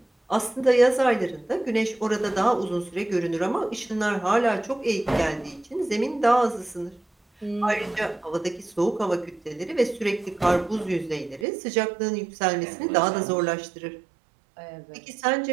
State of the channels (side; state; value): left; drops out; at 11.5 s